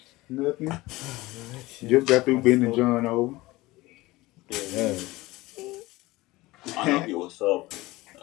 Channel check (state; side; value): quieter; right; 19.9 dB